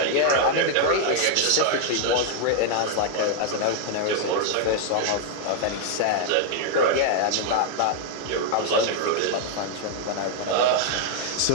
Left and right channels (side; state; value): both; different; correlation 0.00